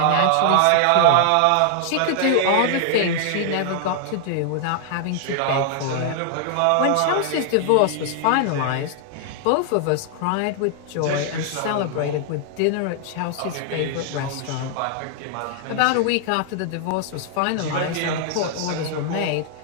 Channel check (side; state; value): both; different; correlation 0.00